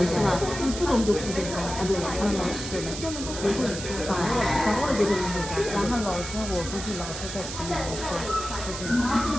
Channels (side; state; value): right; noise; hiss, 8 dB below the sound